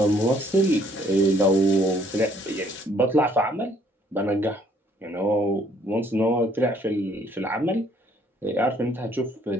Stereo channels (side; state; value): both; normal; correlation 0.63